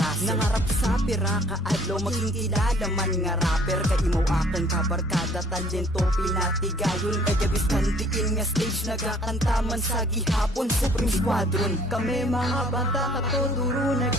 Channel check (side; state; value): both; normal; correlation 0.56